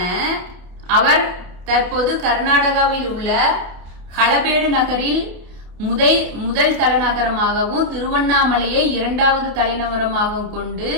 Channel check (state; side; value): late; left; 28 ms